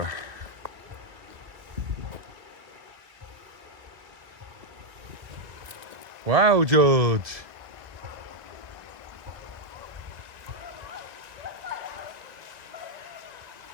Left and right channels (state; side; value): late; left; 2.1 ms